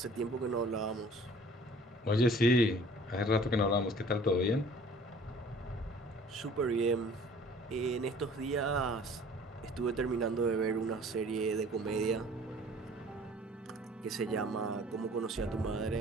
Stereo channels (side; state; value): both; normal; correlation 0.50